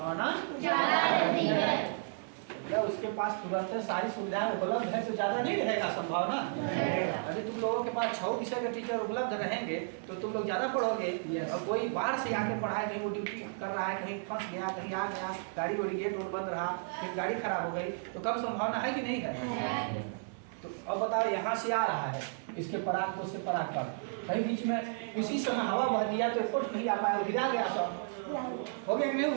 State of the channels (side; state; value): left; silent; 56 dB below the other